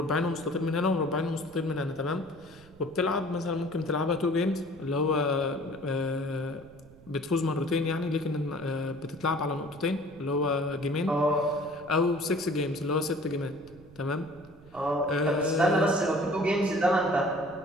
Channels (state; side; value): noise; right; rumble, 23 dB below the sound